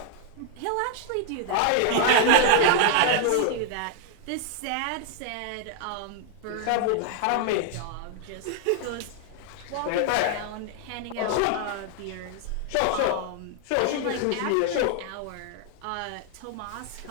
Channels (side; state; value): both; different; correlation 0.00